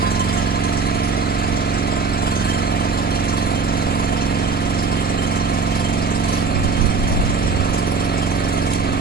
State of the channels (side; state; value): left; quieter; 4.6 dB